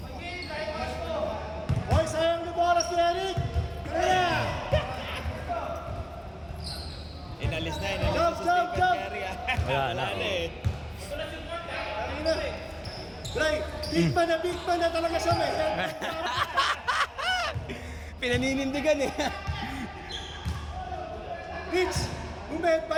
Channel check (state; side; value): identical; both; correlation 1.00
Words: Hoy, sayang na bola si Eric! Kaya! Inalis na Jump, sa jump, Stephen jump! Curry. Wala na. Ina! Dre, big man na talaga siya, may Pinaninindigan eh. Rich,